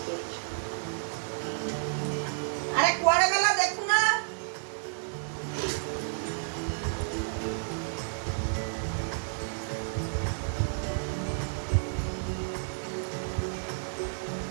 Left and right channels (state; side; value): silent; left; digital silence